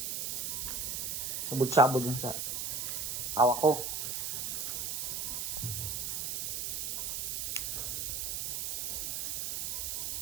Sabod-sabod yung sa hawak ko.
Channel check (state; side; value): noise; right; hiss, 1 dB below the sound